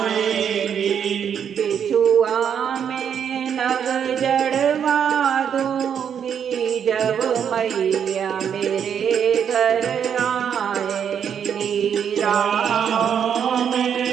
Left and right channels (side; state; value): left; quieter; 8.1 dB